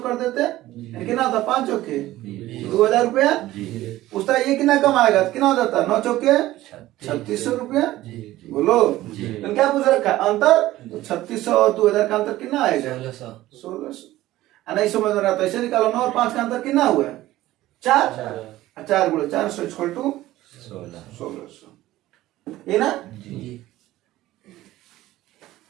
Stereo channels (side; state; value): left; quieter; 15.9 dB